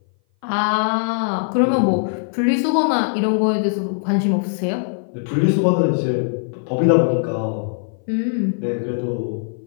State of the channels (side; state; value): right; silent; 58 dB below the other